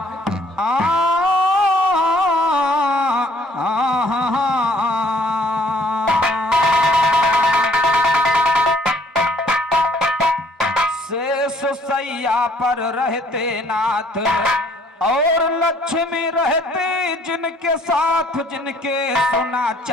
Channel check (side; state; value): both; normal; correlation 0.60